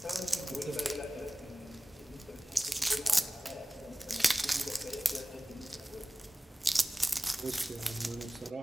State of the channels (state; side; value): normal; both; correlation 0.97